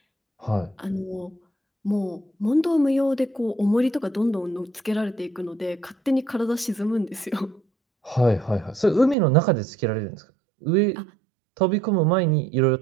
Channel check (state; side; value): drops out; left; at 9.2 s